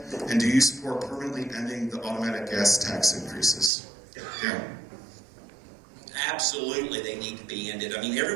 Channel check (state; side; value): drops out; left; at 3.7 s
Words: And do you support permanently ending the automatic gas tax increases? Darren. Absolutely, they need to be ended. I mean,